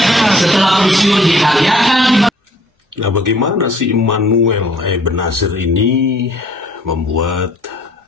setelah pensiun dikaryakan. Nah, bagaimana si Immanuel Ebenezer ini membuat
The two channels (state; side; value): normal; both; correlation 0.58